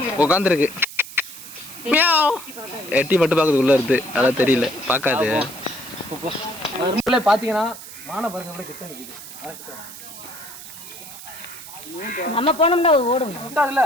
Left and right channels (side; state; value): right; noise; hiss, 14 dB below the sound